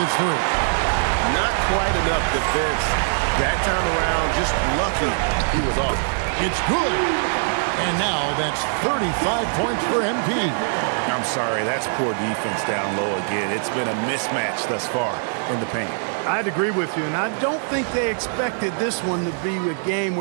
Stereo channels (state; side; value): silent; left; digital silence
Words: three. Not quite enough defense that time around. Just lucky he was off. It's good. And now that's 35 points for MP. I'm sorry, that's poor defense down low again. It's been a mismatch thus far in the paint. I'd agree with you, and I don't think they expected this one to be a game